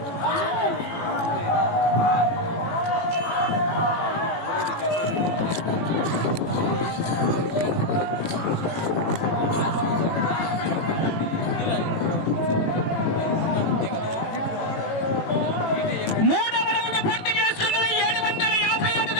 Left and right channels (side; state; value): right; late; 18 ms